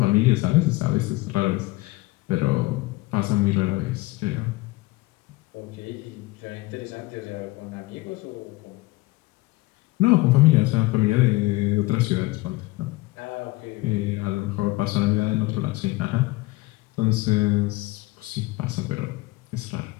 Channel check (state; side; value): quieter; right; 21.1 dB